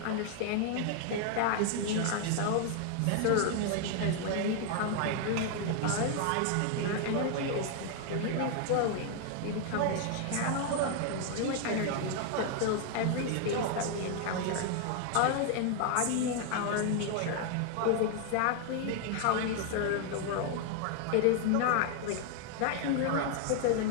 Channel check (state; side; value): different; both; correlation 0.00